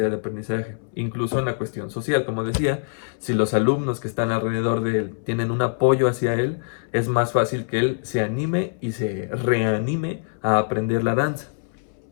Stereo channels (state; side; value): silent; right; 63 dB below the other